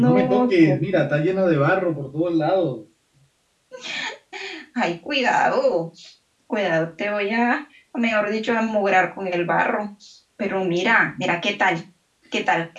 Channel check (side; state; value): both; identical; correlation 1.00